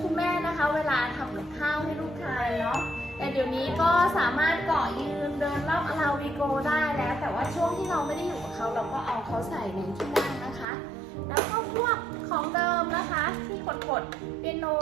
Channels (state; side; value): drops out; left; at 10.7 s